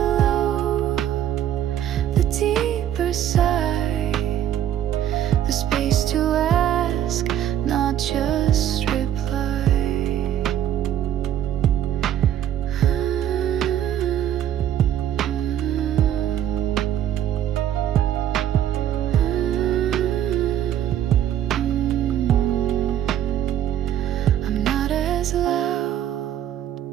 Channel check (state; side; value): quieter; left; 10.8 dB